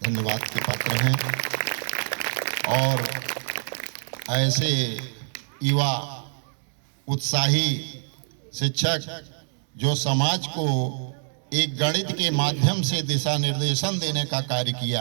धन्यवाद के पात्र हैं। और ऐसे युवा उत्साही शिक्षक जो समाज को एक गणित के माध्यम से दिशा निर्देशन देने का कार्य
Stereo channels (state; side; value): silent; left; digital silence